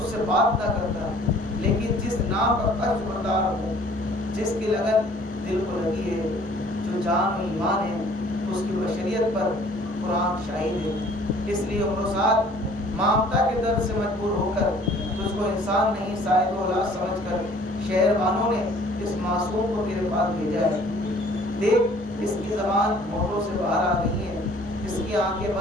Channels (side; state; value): both; normal; correlation 0.54